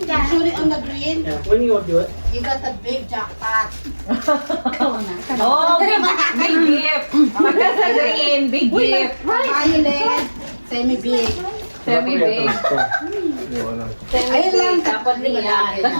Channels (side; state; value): both; inverted; correlation -1.00